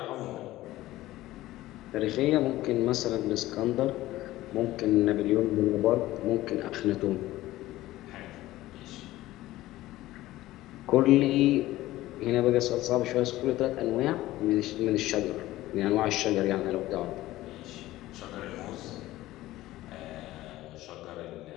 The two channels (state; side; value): quieter; right; 16.3 dB